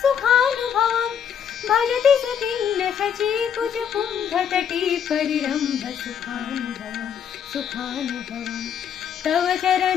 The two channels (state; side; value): quieter; right; 8.2 dB